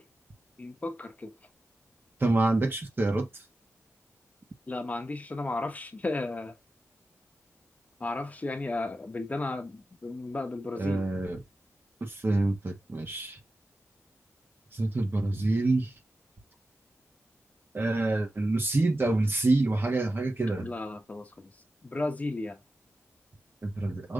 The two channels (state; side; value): normal; both; correlation 0.92